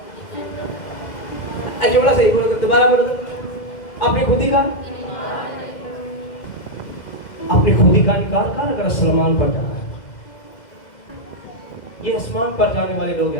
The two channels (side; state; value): right; late; 2.0 ms